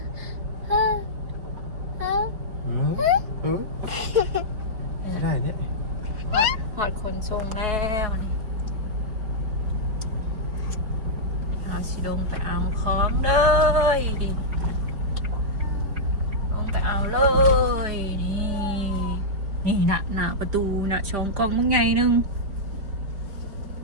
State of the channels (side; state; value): left; late; 5.0 ms